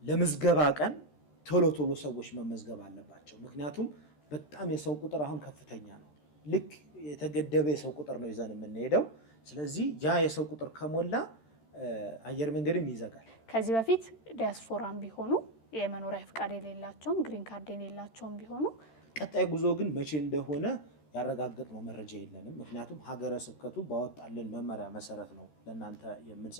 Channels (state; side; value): late; right; 13 ms